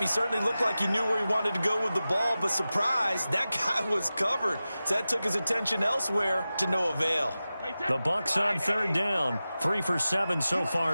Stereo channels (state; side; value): inverted; both; correlation -0.95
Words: certainly looked like he knew where he wanted to go with the ball, but surprise, that guy was covered. So that took his attention elsewhere to no avail. The Bucs on third down, 3 for 7 so